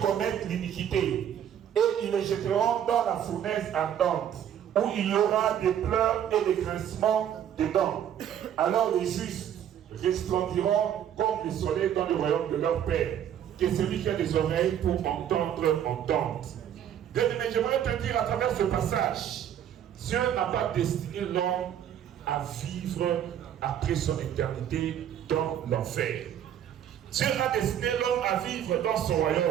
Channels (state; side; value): quieter; left; 9.9 dB